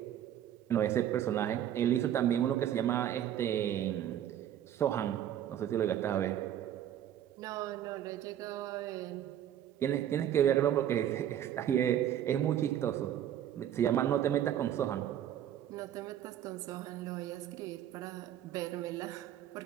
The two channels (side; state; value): left; quieter; 10.9 dB